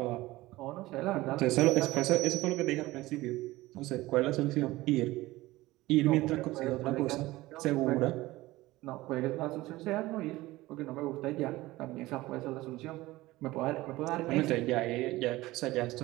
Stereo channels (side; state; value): left; quieter; 18.5 dB